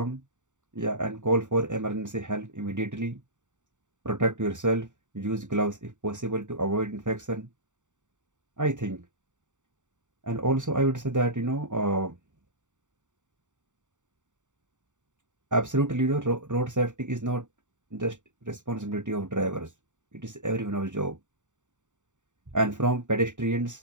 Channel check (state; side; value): late; left; 0.86 ms